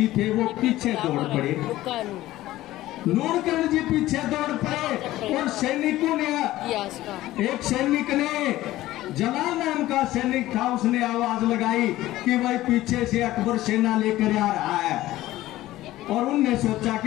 थे, वो पीछे दौड़ पड़े। नूनकरण जी पीछे दौड़ पड़े और सैनिकों ने, एक सैनिक ने, जलाल नाम का सैनिक था, उसने आवाज लगाई कि भाई पीछे से अकबर सेना लेकर आ रहा है। और उनने सोचा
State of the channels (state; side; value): quieter; right; 15.8 dB